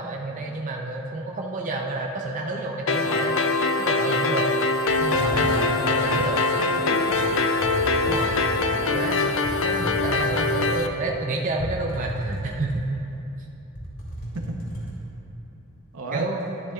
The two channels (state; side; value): normal; both; correlation 0.11